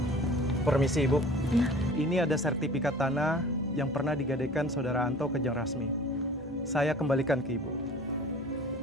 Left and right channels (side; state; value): both; normal; correlation 0.44